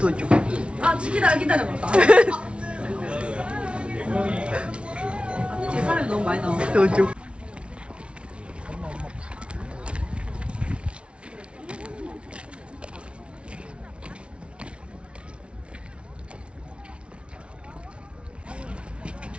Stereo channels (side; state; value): left; late; 0.059 ms